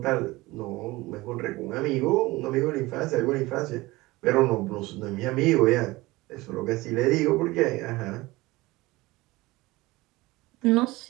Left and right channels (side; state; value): left; quieter; 20.5 dB